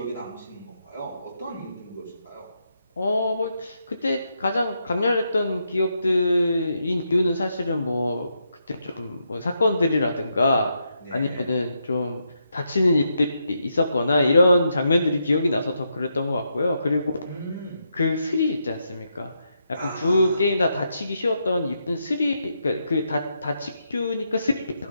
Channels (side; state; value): both; inverted; correlation -0.81